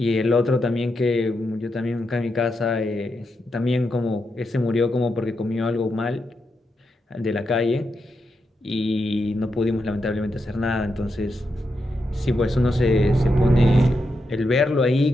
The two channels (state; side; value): normal; both; correlation 0.85